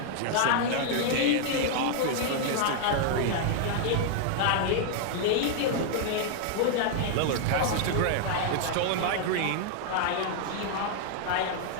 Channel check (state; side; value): different; both; correlation 0.00